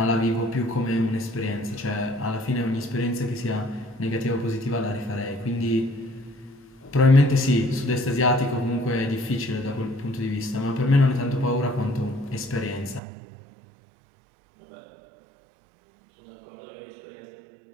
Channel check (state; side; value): drops out; left; at 13.0 s